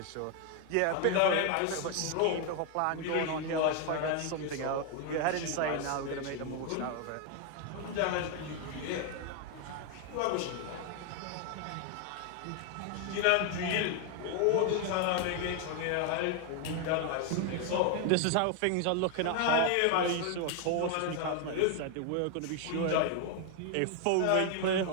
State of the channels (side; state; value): both; different; correlation 0.01